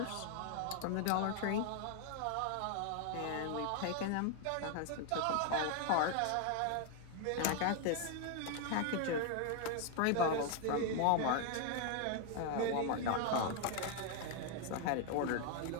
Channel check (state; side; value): different; both; correlation 0.00